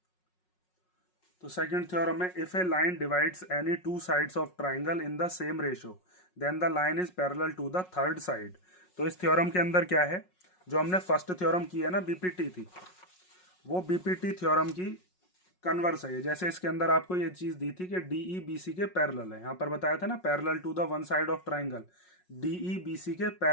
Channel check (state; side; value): late; right; 5.5 ms